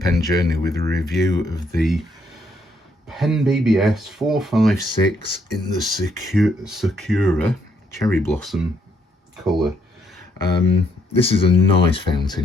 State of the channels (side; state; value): both; normal; correlation 0.72